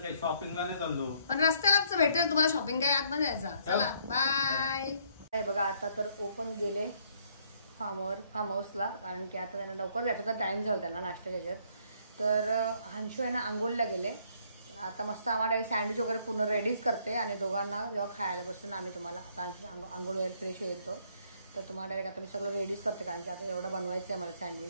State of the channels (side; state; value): both; inverted; correlation -0.66